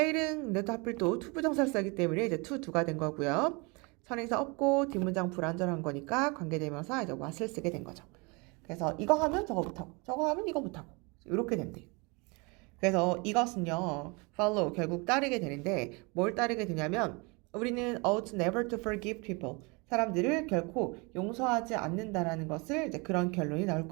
근데 또 하필 또 투부정사를 쓰기 때문에 이제 to do가 된 거고요. 선행사 없고 뒷문장 불완전한 거니까 관계대명사 이제 what을 쓰게 된 거죠. 그래서 이거 하면 저거 못하고 저거 하면 이거 못하고 이렇게 된대요. 그래서 이것은요 follow 결국 따르게 되는데 뭘 따르게 되냐면 우리는 ought never to forgive people 사람들을 결코 용서하지 않는다라는 것을 이제 그런 결론이 나올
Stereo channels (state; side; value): quieter; left; 29.0 dB